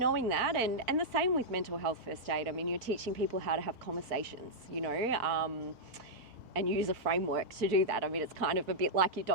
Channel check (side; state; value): left; late; 1.3 ms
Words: that. And the same with mental health first aid. I mean, you're teaching people how to have conversations, you know, and use a framework to do that. I mean, it's kind of a bit like your